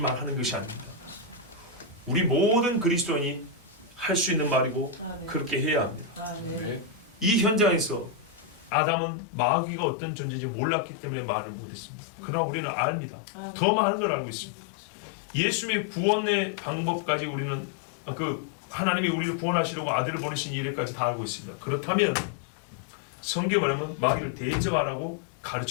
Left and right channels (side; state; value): right; drops out; at 8.7 s